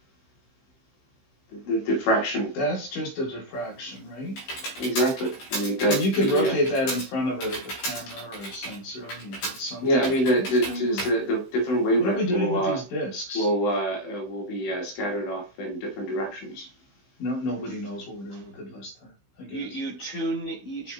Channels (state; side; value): late; right; 15 ms